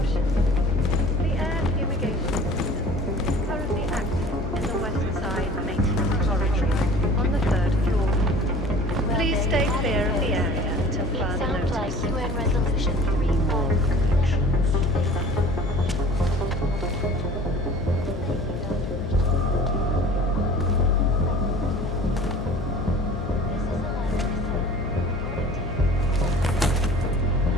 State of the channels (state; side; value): noise; left; hum, 8 dB below the sound